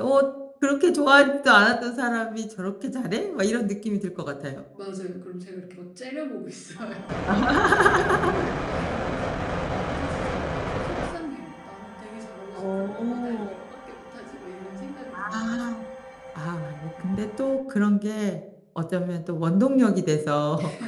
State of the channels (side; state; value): both; identical; correlation 1.00